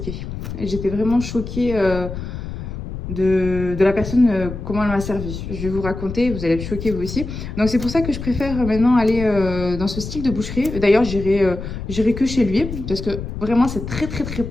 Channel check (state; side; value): noise; left; rumble, 8 dB below the sound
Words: J'étais vraiment choquée de la personne, comment elle m'a servi. Je vais vous raconter, vous allez être choqués vous aussi. Donc c'est pour ça que je préfère maintenant aller dans ce style de boucherie. D'ailleurs, j'irai que chez lui parce que vraiment c'est très